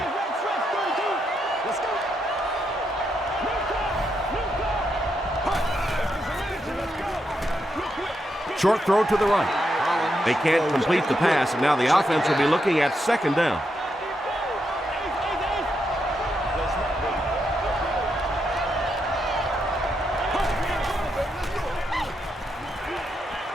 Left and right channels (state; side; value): normal; both; correlation 0.81